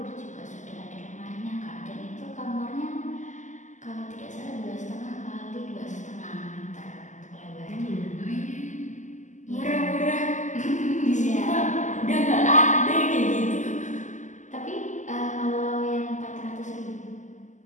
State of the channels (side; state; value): right; late; 0.36 ms